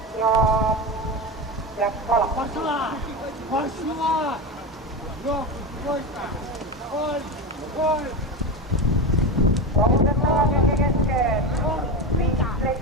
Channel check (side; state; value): both; normal; correlation 0.20